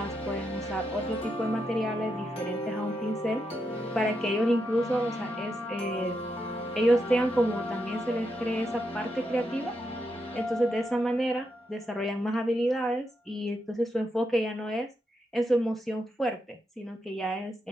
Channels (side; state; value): both; normal; correlation 0.83